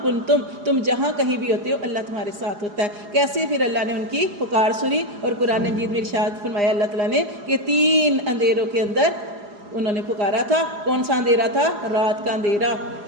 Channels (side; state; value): left; late; 4.9 ms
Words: کنتم، تم جہاں کہیں بھی ہوتے ہو اللہ تمہارے ساتھ ہوتا ہے۔ کیسے؟ پھر اللہ نے ان کی پکار سنی، اور قرآن مجید میں ارشاد فرمایا اللہ تعالیٰ نے کہ تین اندھیروں کے اندر انہوں نے پکارا تھا۔ کون سا اندھیرا تھا؟ رات کا اندھیرا،